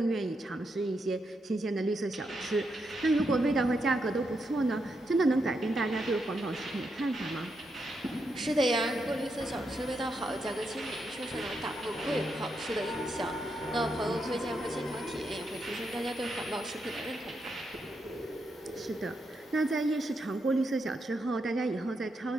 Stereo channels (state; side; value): normal; both; correlation 0.82